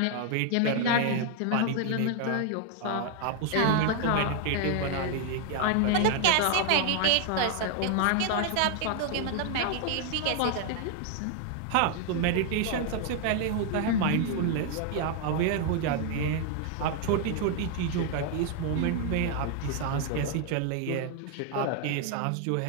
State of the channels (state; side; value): different; both; correlation 0.00